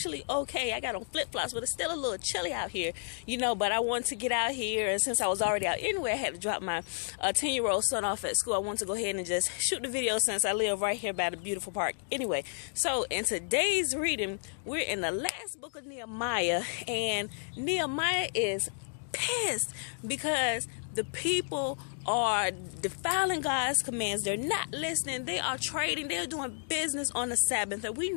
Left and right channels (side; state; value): right; silent; digital silence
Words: okay. I got on flip-flops, but it's still a little chilly out here, but I wanted to get out here. And since I was already out anyway, I had to drop my 10-year-old son off at school. I wanted to go ahead and just shoot the video since I live right here by the beautiful park. Anyway, so in today's reading, we're in the last book of Nehemiah, and Nehemiah is pissed because the people are defiling God's commands. They're not listening. They are trading. They're doing business on the Sabbath. And we